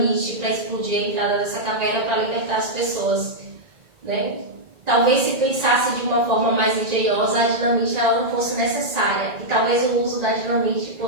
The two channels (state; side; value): late; left; 1.9 ms